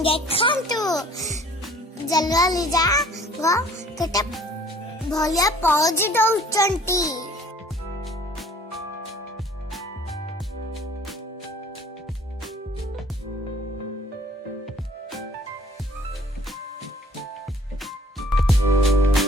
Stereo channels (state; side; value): normal; both; correlation 0.54